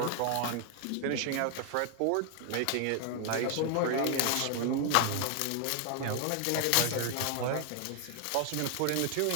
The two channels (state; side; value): different; both; correlation 0.00